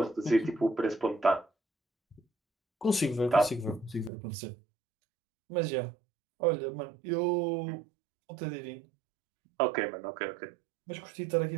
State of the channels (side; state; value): left; drops out; at 4.1 s